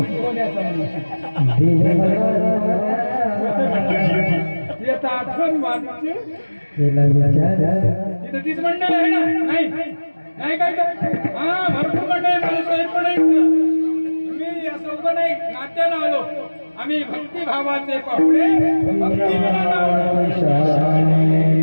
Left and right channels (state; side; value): inverted; both; correlation -1.00